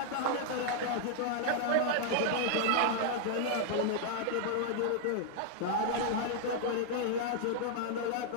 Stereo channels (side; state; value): both; different; correlation -0.01